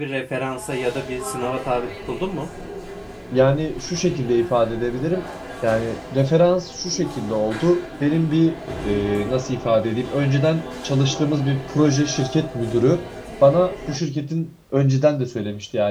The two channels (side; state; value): both; identical; correlation 1.00